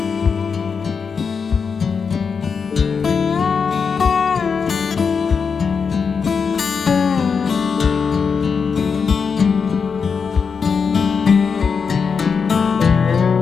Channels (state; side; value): quieter; right; 5.8 dB